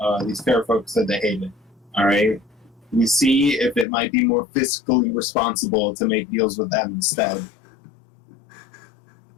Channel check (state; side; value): drops out; right; at 3.9 s